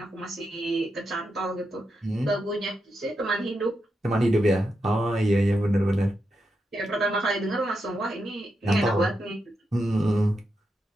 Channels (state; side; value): normal; both; correlation 0.85